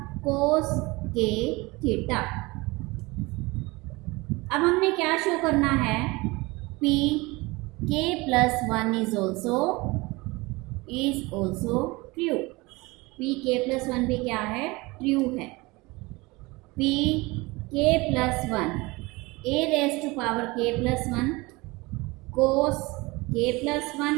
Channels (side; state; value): left; quieter; 23.4 dB